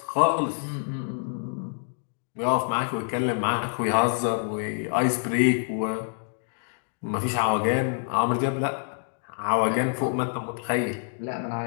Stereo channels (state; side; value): silent; right; digital silence